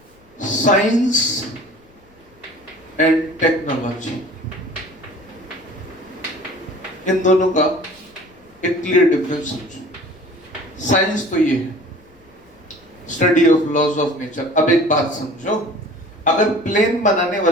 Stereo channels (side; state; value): left; noise; rumble, 30 dB below the sound